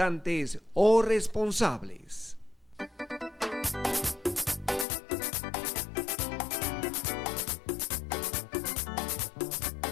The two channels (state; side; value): drops out; right; at 4.9 s